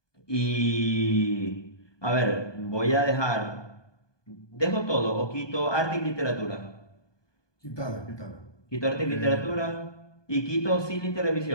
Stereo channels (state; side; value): late; right; 1.2 ms